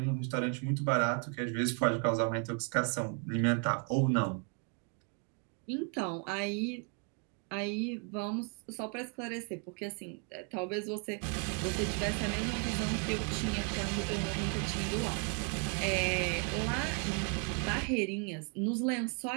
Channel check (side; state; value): left; quieter; 36.2 dB